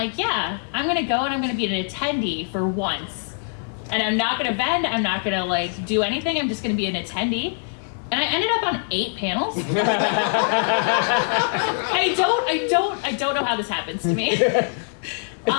yeah, I'm gonna go and I'm gonna be an attendee for once. And I'm not gonna vend, I'm not gonna like do anything, I'm just gonna be an attendee. And I ended up on 8 panels. I don't know how this happens to me.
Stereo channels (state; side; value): silent; right; 63 dB below the other